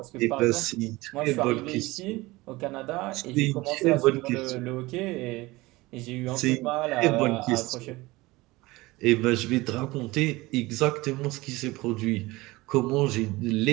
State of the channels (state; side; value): quieter; left; 20.9 dB